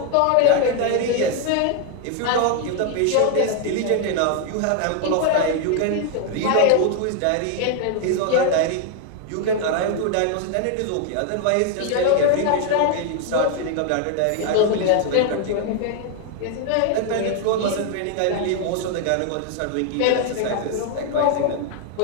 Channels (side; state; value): both; different; correlation 0.00